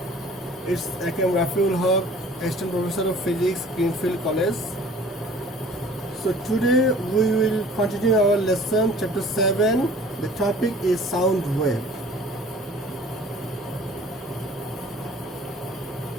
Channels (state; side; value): normal; both; correlation 0.49